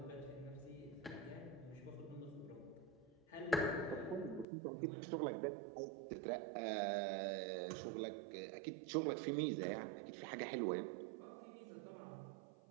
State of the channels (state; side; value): drops out; left; at 4.5 s